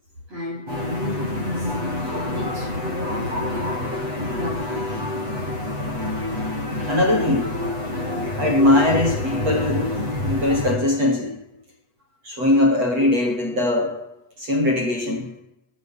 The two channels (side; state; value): left; late; 8.1 ms